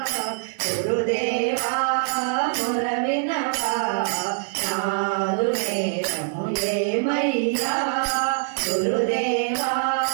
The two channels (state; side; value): silent; left; digital silence